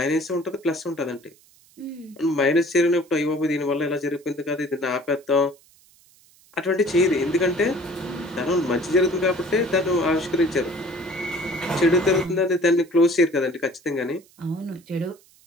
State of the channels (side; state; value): right; noise; hiss, 29 dB below the sound